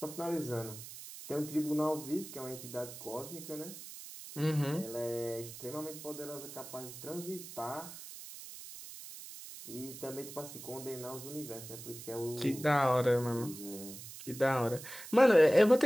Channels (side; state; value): right; noise; hiss, 13 dB below the sound